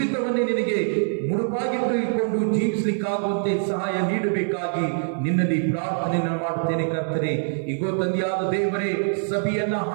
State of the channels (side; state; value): left; silent; digital silence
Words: ನಿನಗೆ ಮುಡುಪಾಗಿಟ್ಟುಕೊಂಡು ಜೀವಿಸಲಿಕ್ಕಾಗುವಂತೆ ಸಹಾಯ ನೀಡಬೇಕಾಗಿ ನಿನ್ನಲ್ಲಿ ಪ್ರಾರ್ಥನೆಯನ್ನು ಮಾಡುತ್ತೇನೆ ಕರ್ತನೆ. ಈಗೋ ತಂದೆಯಾದ ದೇವರೇ, ಸಭೆಯನ್ನ